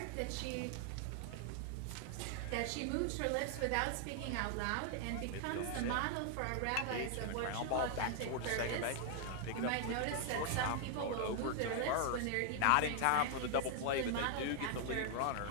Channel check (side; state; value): both; different; correlation 0.00